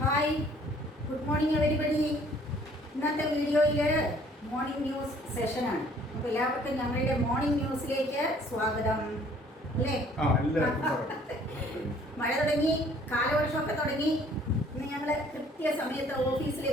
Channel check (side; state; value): both; normal; correlation 0.58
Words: Hi, good morning everybody. ഇന്നത്തെ വീഡിയോയിൽ morning news സെഷനാണ്. അപ്പോൾ എല്ലാവർക്കും ഞങ്ങളുടെ മോർണിംഗ് ന്യൂസിലേക്ക് സ്വാഗതം. അല്ലേ? മഴ തുടങ്ങി, കാലവർഷമൊക്കെ തുടങ്ങി. ഇന്ന് ഞങ്ങൾ കൃത്യസമയത്ത്